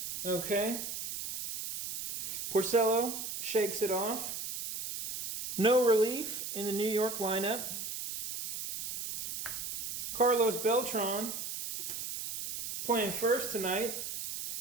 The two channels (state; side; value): noise; right; hiss, 6 dB below the sound